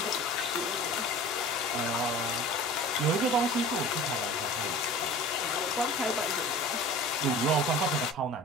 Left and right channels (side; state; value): both; normal; correlation 0.40